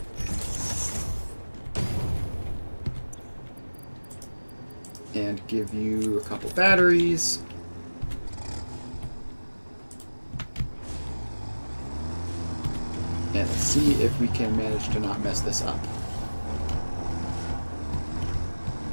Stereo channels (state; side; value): inverted; both; correlation -1.00